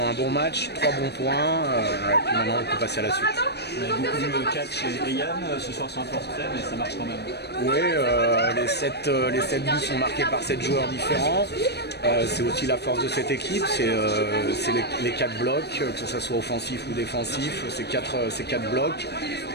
un bon match, 3 bons points, et puis maintenant on peut passer à la suite. On a beaucoup vu Catch et Yann ce soir sur un forfait, mais ça marche quand même. Oui, les 7 buts sont marqués par 7 joueurs différents. C'est aussi la force de cette équipe, c'est les 4 blocs, que ce soit offensif ou défensif, c'est 4 blocs.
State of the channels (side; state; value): right; late; 0.48 ms